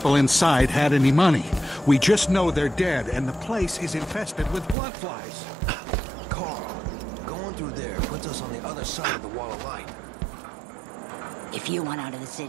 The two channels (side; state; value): left; drops out; at 4.8 s